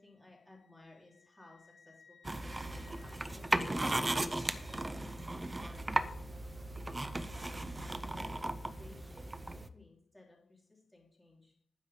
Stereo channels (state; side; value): normal; both; correlation 0.98